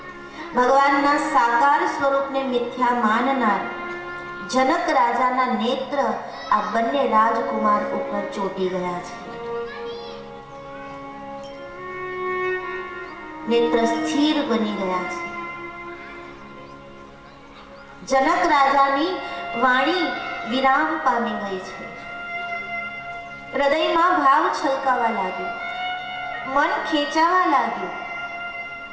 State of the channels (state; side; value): identical; both; correlation 1.00